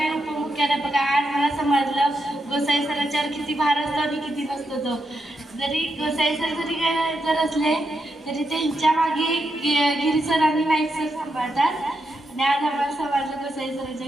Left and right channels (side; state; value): both; normal; correlation 0.84